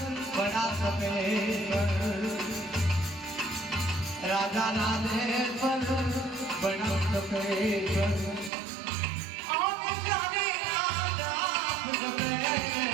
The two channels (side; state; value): left; drops out; at 8.5 s